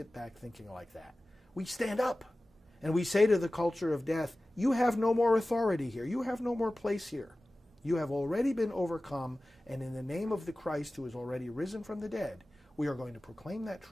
back thinking like that. We stand up and we say to the culture of death, you have no more authority here. You have no more place here. You have already been overcome, and in the name of the Christ who is already risen from the dead, we are going to proclaim that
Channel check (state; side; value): normal; both; correlation 0.96